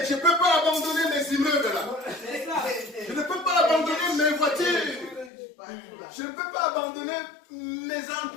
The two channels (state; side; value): drops out; right; at 5.3 s